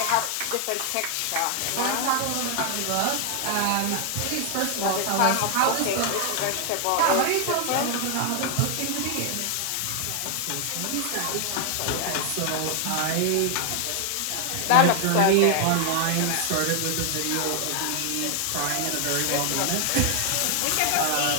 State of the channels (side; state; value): both; different; correlation 0.00